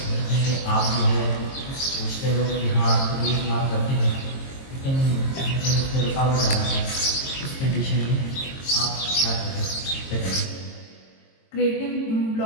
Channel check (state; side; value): late; right; 22 ms